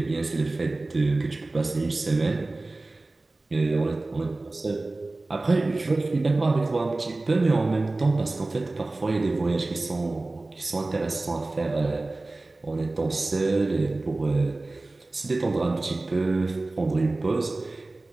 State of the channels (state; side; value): quieter; left; 3.1 dB